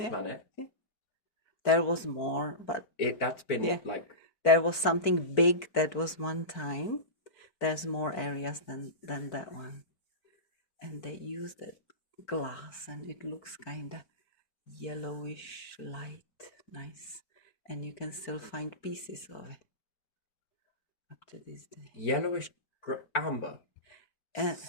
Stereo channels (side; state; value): right; late; 4.5 ms